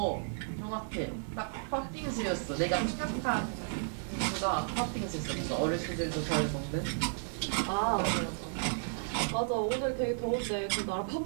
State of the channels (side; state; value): left; silent; 56 dB below the other